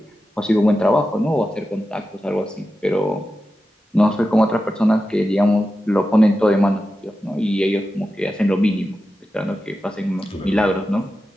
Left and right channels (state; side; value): normal; both; correlation 0.91